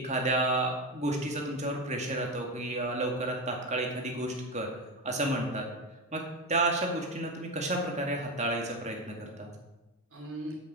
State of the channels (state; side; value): normal; both; correlation 0.17